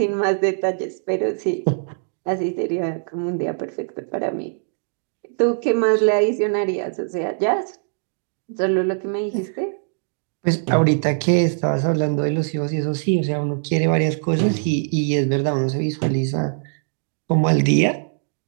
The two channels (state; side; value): silent; left; digital silence